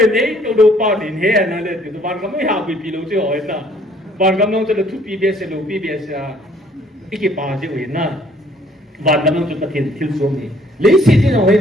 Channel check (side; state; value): both; normal; correlation 0.61